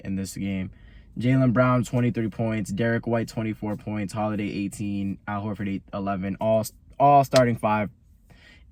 this game. Jaylen Brown, 23 points. Derek White, 24 points. Holiday, 18. Al Horford, 11. All starting five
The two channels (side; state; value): both; identical; correlation 1.00